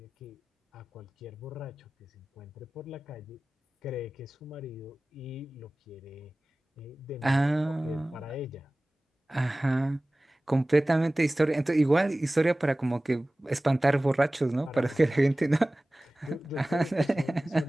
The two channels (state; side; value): normal; both; correlation 0.98